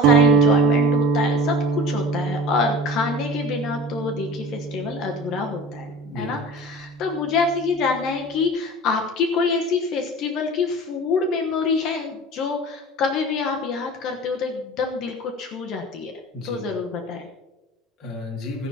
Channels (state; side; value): normal; both; correlation 0.39